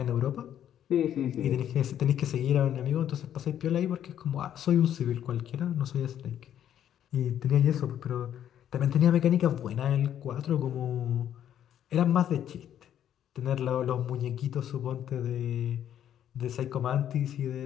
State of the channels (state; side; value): quieter; right; 10.4 dB